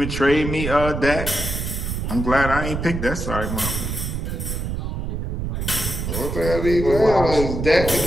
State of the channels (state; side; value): noise; right; rumble, 3 dB below the sound